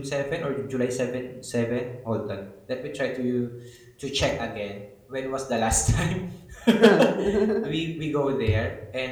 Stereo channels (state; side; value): identical; both; correlation 1.00